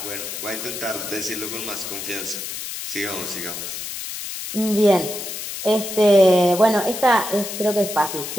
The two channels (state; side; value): noise; left; hiss, 7 dB below the sound